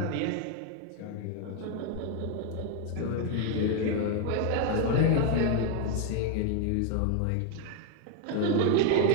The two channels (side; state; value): both; different; correlation 0.01